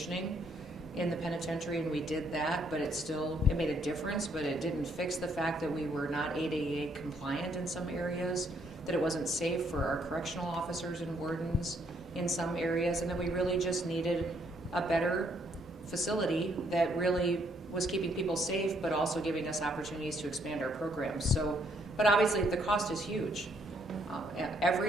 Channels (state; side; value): normal; both; correlation 0.70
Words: in the penitentiary, and we did that, but it made a difference, but it didn't fix the fact that we were not ADA compliant in some areas, that it wasn't safe for our correctional officers and wardens in some areas, and that we really just needed a better facility that really was keeping people safe, but also giving us opportunities to expand our programs. So, but obviously the cost is huge.